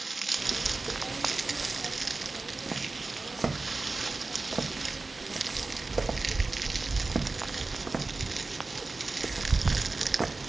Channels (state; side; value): quieter; left; 3.6 dB